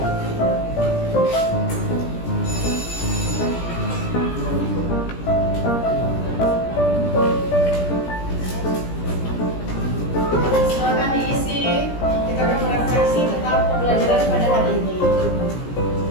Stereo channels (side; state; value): right; late; 17 ms